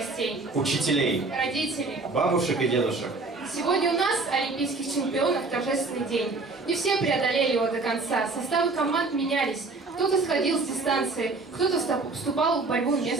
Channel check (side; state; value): left; quieter; 3.6 dB